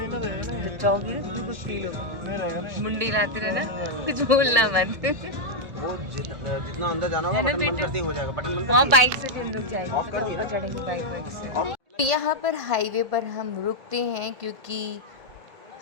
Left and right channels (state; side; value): late; left; 1.8 ms